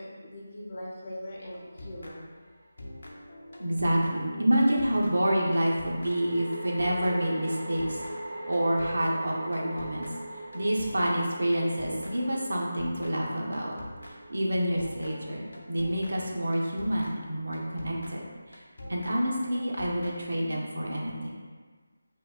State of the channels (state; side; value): inverted; both; correlation -0.94